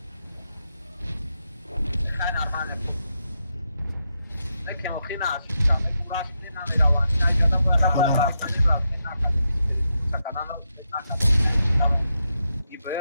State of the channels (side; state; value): both; inverted; correlation -0.84